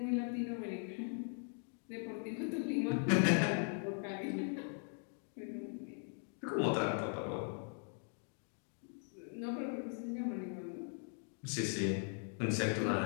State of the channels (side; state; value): right; silent; 51 dB below the other